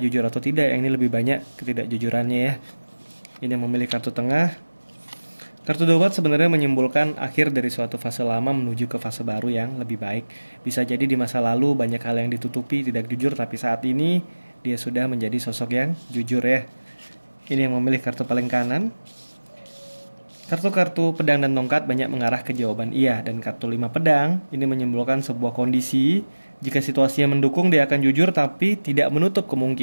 jujur atau tidak, yang ini lebih banyak ketidakjujurannya ya. Ini yang memilih kartu tengah. Kartu Dobat sebenarnya menyimpulkan akhir dari suatu fase lama menuju ke fase baru yang lebih baik. Bisa jadi di masa lalu banyak hal yang ditutupi, tidak jujur, tapi saat ini dia sudah menjadi sosok yang jujur ya. Ini yang memilih kartu paling kanan. Kartu-kartu pedang dan tongkat banyak mengarah ke jawaban iya. Dan kartu 5 pedang ini menyimpulkan sebuah kondisi. Jika situasinya mendukung dia akan jujur, tapi tidak menutup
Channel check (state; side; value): inverted; both; correlation -1.00